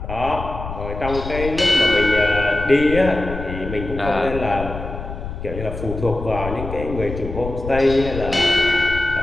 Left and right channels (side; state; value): left; noise; rumble, 8 dB below the sound